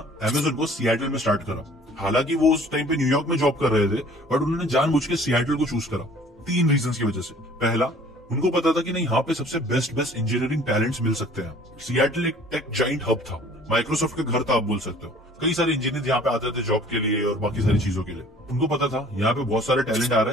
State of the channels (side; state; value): both; normal; correlation 0.51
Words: अमेज़न को सिएटल में स्टार्ट करा। हालांकि वो उस टाइम पे न्यूयॉर्क में जॉब कर रहे थे, बट उन्होंने जानबूझ के सिएटल को चूज करा 3 रीजंस की वजह से। पहला, उनको पता था कि नहीं, यहाँ पे सबसे बेस्ट इंजीनियरिंग टैलेंट्स मिल सकते हैं। सिएटल एक टेक जाइंट हब था, माइक्रोसॉफ्ट का घर था आप बोल सकते हो। कई सारे इंजीनियर यहाँ पे आते थे जॉब के लिए और बाकी सारी चीजों के लिए। उनको पता था यहाँ पे बहुत सारे टैलेंट आ